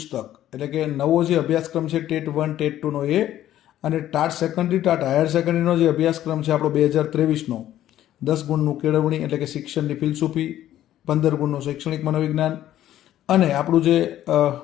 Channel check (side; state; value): right; quieter; 12.6 dB